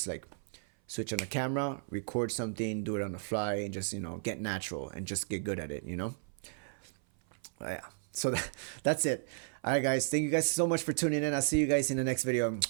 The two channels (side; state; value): left; silent; 55 dB below the other